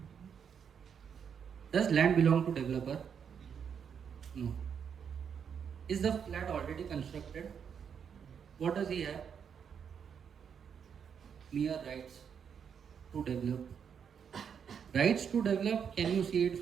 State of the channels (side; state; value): left; quieter; 7.3 dB